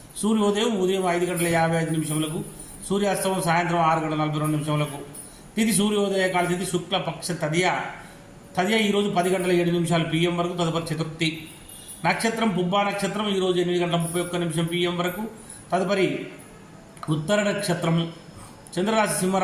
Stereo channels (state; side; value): identical; both; correlation 1.00